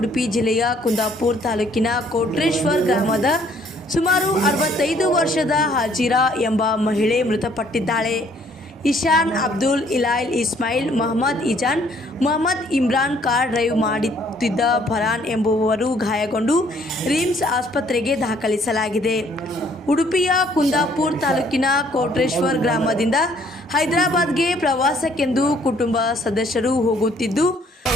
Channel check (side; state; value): both; normal; correlation 0.63